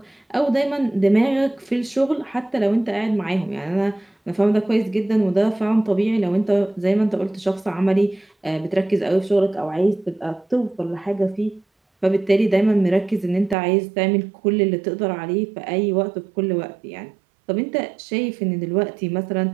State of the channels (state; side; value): drops out; left; at 13.6 s